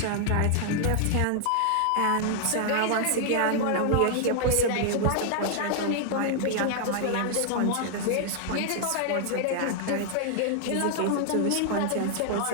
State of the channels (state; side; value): different; both; correlation 0.00